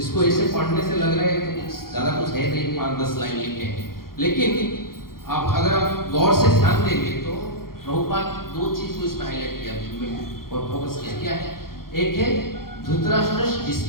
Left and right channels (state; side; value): late; right; 0.93 ms